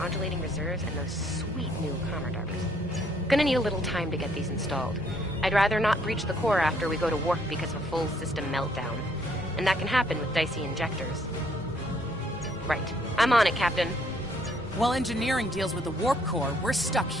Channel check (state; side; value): normal; both; correlation 0.67